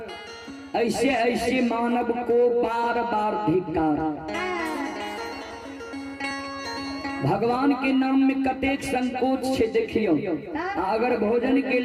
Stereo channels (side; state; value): both; identical; correlation 1.00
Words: ऐसे ऐसे मानव को बार बार धिक्कार। भगवान के नाम में कतेक संकोच से देखियो, अगर भोजन के